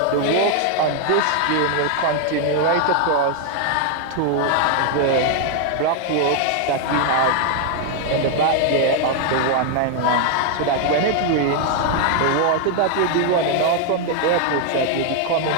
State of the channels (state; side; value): different; both; correlation 0.00